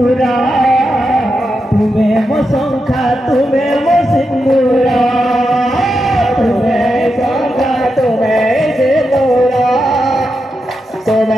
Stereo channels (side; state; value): both; normal; correlation 0.87